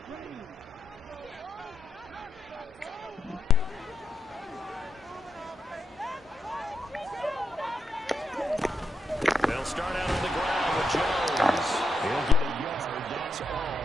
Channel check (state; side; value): normal; both; correlation 0.83